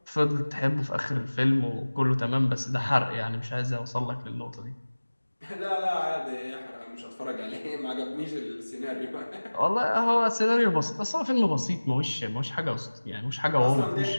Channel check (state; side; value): inverted; both; correlation -1.00